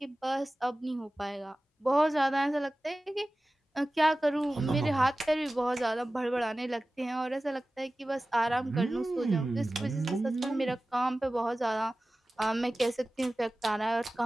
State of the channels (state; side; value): normal; both; correlation 0.96